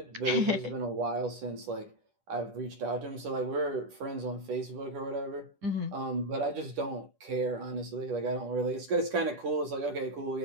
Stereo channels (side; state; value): left; late; 10 ms